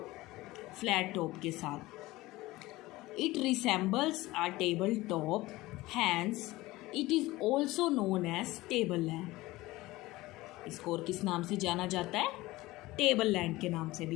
टॉप के साथ। It resembles a table top, hence it is also known as table land. इसको और किस नाम से जाना जाता है, टेबल लैंड के नाम से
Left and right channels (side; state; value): right; quieter; 19.1 dB